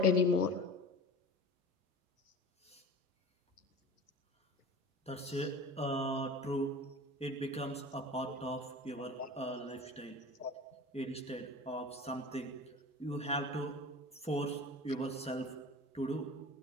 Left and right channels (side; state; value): both; normal; correlation 0.37